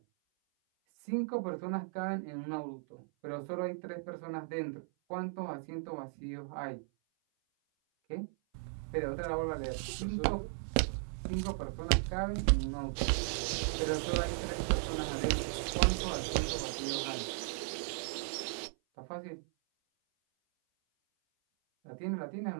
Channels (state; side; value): silent; left; 54 dB below the other